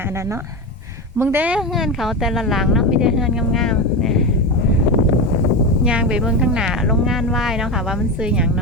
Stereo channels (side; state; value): both; normal; correlation 0.18